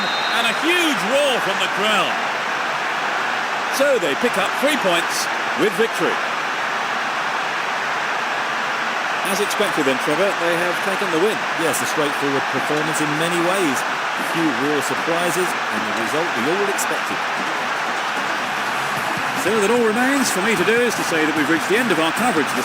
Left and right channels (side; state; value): both; identical; correlation 1.00